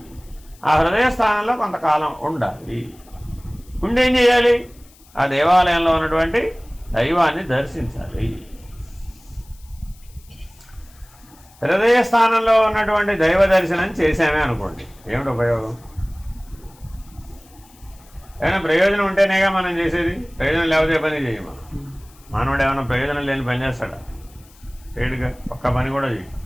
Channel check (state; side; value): noise; left; hiss, 27 dB below the sound